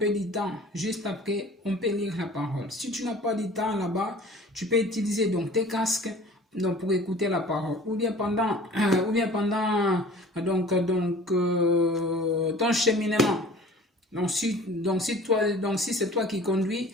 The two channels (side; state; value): both; normal; correlation 0.45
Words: de temps, juste après, on peut lire la parole. Si tu n'as pas de temps là-bas, tu peux utiliser donc tes casques donc pour écouter la parole. Ou bien pendant ton cheminement. Donc si c'est toi qui conduis,